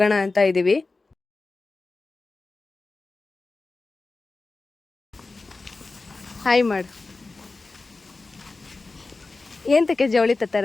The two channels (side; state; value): right; quieter; 3.6 dB